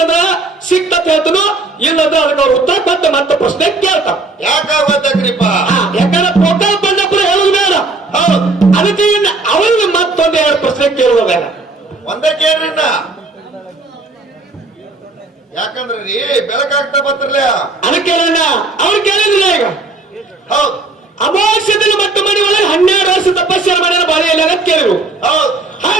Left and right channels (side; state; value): left; quieter; 3.3 dB